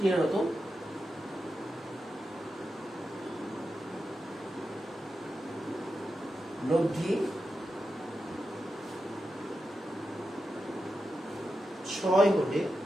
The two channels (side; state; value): both; normal; correlation 0.89